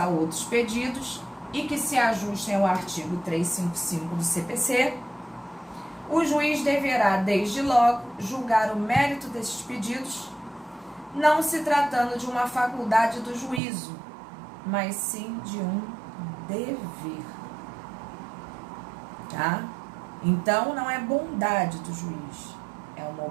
outros pedidos e que se ajustem ao artigo 355 do CPC, o juiz deverá, desde logo, julgar o mérito desses pedidos, não se tratando de uma faculdade do juízo, mas sim de um dever. Tá? Então, não é bondade do juiz, é uma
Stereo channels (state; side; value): drops out; left; at 13.6 s